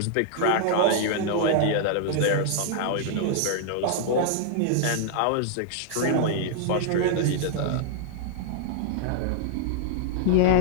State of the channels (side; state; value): both; different; correlation -0.01